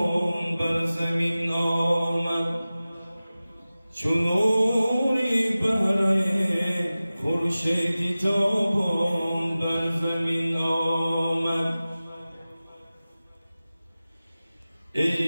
بر زمین آمد چون نوری بهره خورشید تابان بر زمین آمد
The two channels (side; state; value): both; inverted; correlation -0.97